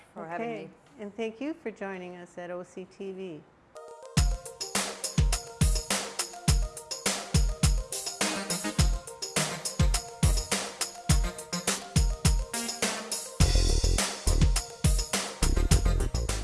for having me. And thank you for joining us at OCTV.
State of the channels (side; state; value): both; identical; correlation 1.00